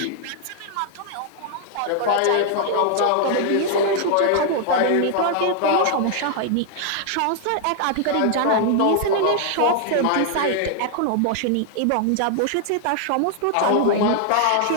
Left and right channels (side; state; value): both; different; correlation 0.00